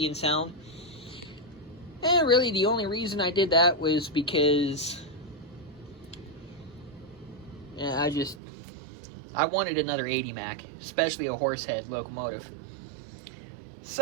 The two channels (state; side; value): drops out; left; at 8.4 s